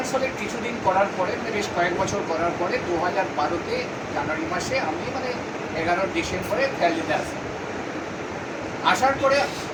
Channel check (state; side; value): identical; both; correlation 1.00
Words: কিছুদিন করার পরে বেশ কয়েক বছর করার পরে 2012-তে জানুয়ারি মাসে আমি 11 ডিসেম্বরে ভ্যালিতে আসি। আসার পরে